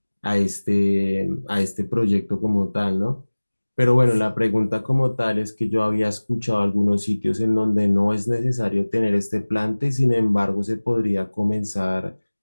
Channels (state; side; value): inverted; both; correlation -1.00